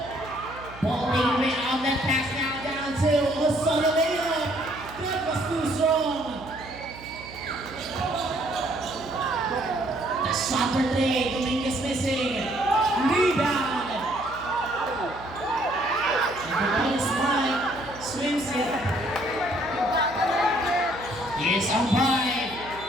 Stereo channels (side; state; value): right; noise; hum, 17 dB below the sound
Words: Ball taken away out that pass now down to Osorio layup. That was too strong. The shot for three. Dominguez missing. Rebound. And the ball is fine. Swims it. Here's on by.